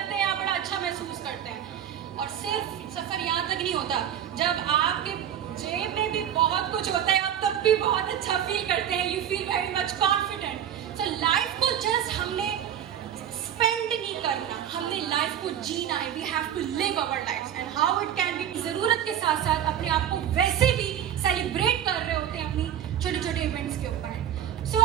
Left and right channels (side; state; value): left; quieter; 10.0 dB